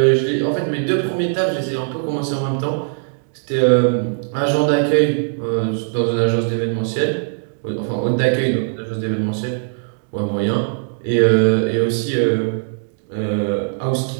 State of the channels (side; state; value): left; silent; digital silence